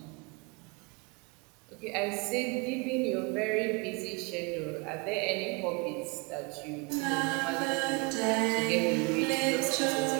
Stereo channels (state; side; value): quieter; left; 30.4 dB